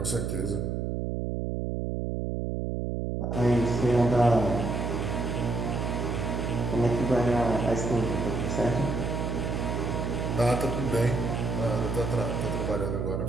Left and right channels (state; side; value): noise; right; hum, 1 dB below the sound